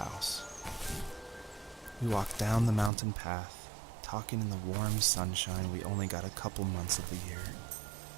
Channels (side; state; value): left; drops out; at 2.9 s